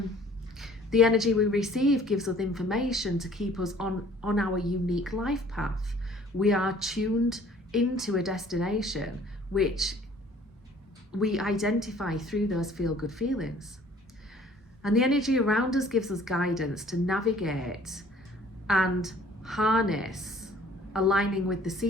The energy we receive gives us information to keep us on our unique life path. We are tuned into a destination which we identify through those feel-good feelings. And the energy around us gives us guidance to navigate and harness, aligning with the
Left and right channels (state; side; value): normal; both; correlation 0.54